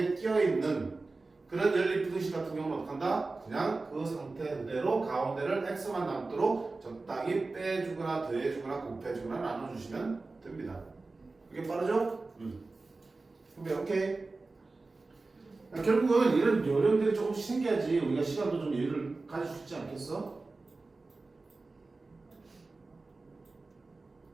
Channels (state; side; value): quieter; left; 3.6 dB